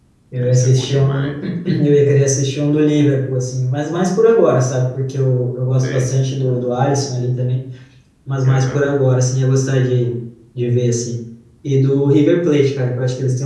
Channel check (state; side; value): identical; both; correlation 1.00